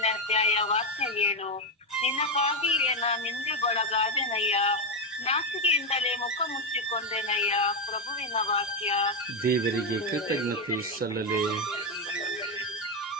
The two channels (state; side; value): normal; both; correlation 0.06